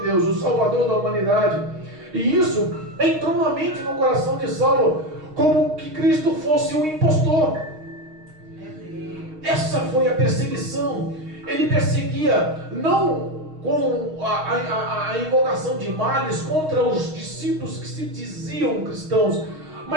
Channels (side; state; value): left; late; 6.4 ms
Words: Deus, o Salvador da humanidade. E isso entrou na mente, no coração de Saulo, como que Cristo fosse um impostor. Essa foi a perseguição. Ele perseguia não com a invocação de males contra os discípulos que se diziam cristãos,